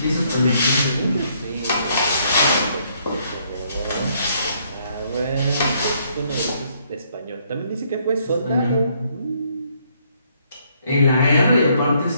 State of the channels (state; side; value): inverted; both; correlation -0.69